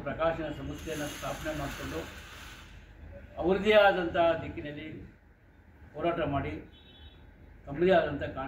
ಪ್ರಕಾಶನ ಸಂಸ್ಥೆಯನ್ನು ಸ್ಥಾಪನೆ ಮಾಡಿಕೊಂಡು ಅವರದೇ ಆದಂಥ ದಿಕ್ಕಿನಲ್ಲಿ ಹೋರಾಟ ಮಾಡಿ ತಮ್ಮದೇ ಆದಂಥ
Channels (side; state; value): both; identical; correlation 1.00